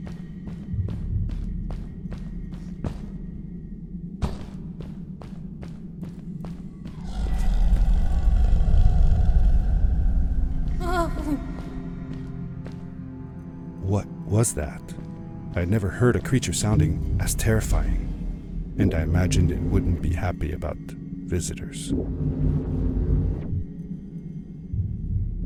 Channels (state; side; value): identical; both; correlation 1.00